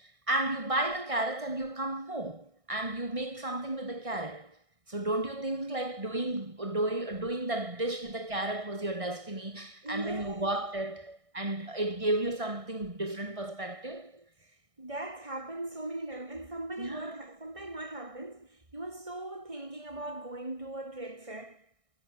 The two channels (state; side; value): late; left; 1.6 ms